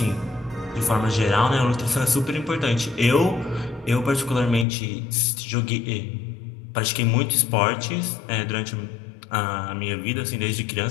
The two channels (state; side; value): drops out; right; at 4.7 s